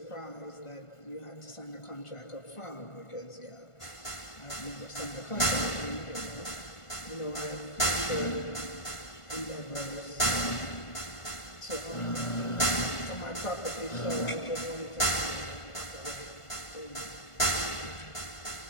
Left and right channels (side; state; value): right; late; 1.5 ms